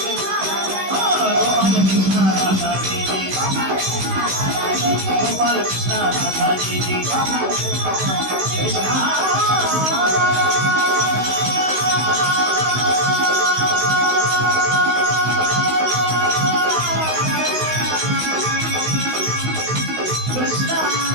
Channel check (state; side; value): late; left; 16 ms